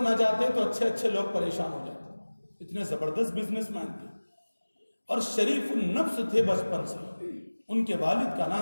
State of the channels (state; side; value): inverted; both; correlation -1.00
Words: نہ جاتے تو اچھے لوگ پریشان ہو جاتے، اتنے زبردست بزنس مین تھے، اور شریف النفس تھے بچپن سے۔ ان کے والد کا